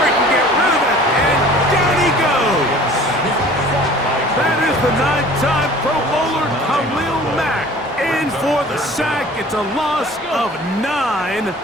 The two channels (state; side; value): normal; both; correlation 0.47